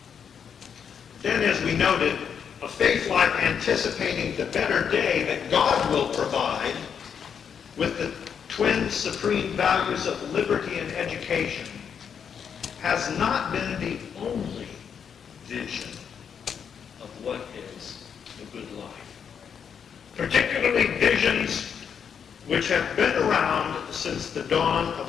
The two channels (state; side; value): quieter; right; 7.3 dB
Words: Then, as we noted, a faith life anticipating the better day that God will provide with the twin supreme values of liberty and education has not been the only vision of what is the good life. Particularly visions which have been around since the dawn